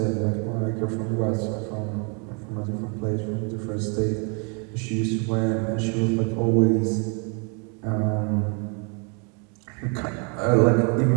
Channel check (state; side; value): quieter; left; 36.1 dB